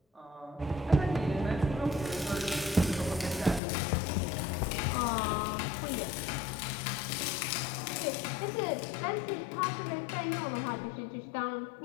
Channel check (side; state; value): right; drops out; at 3.6 s